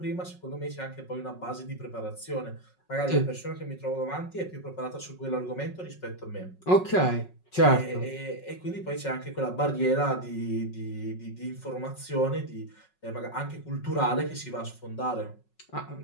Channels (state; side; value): late; right; 5.4 ms